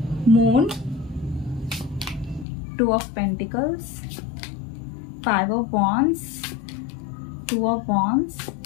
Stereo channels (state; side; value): drops out; right; at 2.5 s